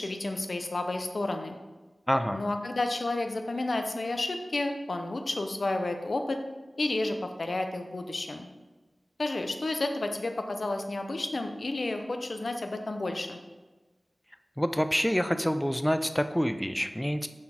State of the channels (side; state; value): both; normal; correlation 0.98